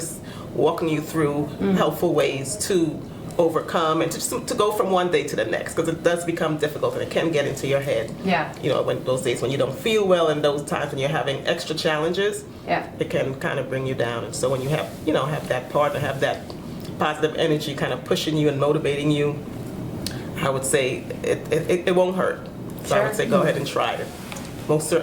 walking you through helpful ways to overcome and to go from one day to the next, because it does become difficult and it can get into your head. Yeah. When those days when you don't feel well, and those times when you're having extra challenges, Yeah. it can kind of bring you down. And so when you have have that partner, have that positive energy kind of pushing you and motivating you, I would say it won't hurt. So I would say go ahead and try it. Most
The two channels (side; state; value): both; identical; correlation 1.00